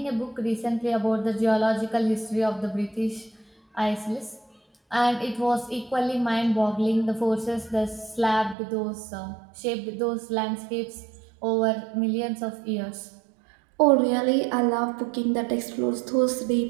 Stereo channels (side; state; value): left; drops out; at 8.6 s